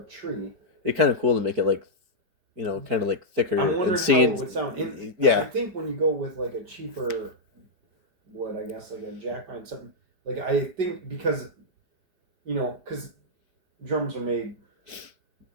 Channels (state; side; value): late; left; 4.9 ms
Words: tree. It's kind of cool to make it like, kind of like thicker I'm wondering and how seeing. it would sound. I Yeah, think when you go with like a cheaper wood, I guess like a jack pine, something like I think because drums are made